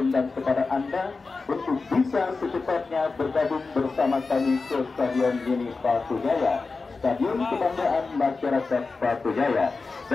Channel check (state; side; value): quieter; right; 4.1 dB